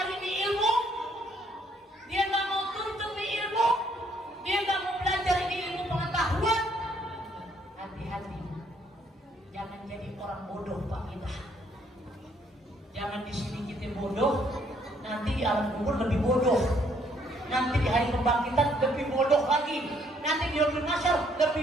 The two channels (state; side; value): normal; both; correlation 0.67